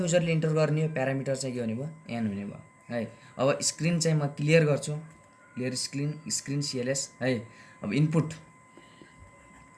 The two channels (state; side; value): identical; both; correlation 1.00